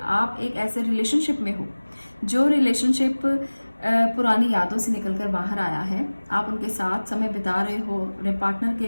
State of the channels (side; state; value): both; inverted; correlation -1.00